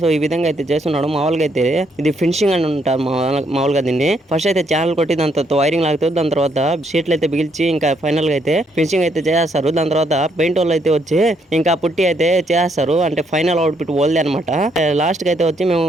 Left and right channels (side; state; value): both; normal; correlation 0.73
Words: సో ఈ విధంగా అయితే చేస్తున్నాడు. మామూలుగా అయితే ఇది ఫినిషింగ్ అని ఉంటారు మామూలుగా దీన్ని. ఫస్ట్ అయితే ఛానల్ కొట్టి దాని తర్వాత వైరింగ్ లాగుతుంది, దాని తర్వాత షీట్లు అయితే బిగిల్చి ఇంకా ఫైనల్ గా అయితే ఫినిషింగ్ అయితే చేస్తారు. దాని తర్వాత పెయింట్ వాళ్ళు అయితే వచ్చి ఇంకా పుట్టి అయితే చేస్తారు, అంటే ఫైనల్ అవుట్పుట్ వాళ్ళదే అనమాట. లాస్ట్ కి అయితే వచ్చి మేము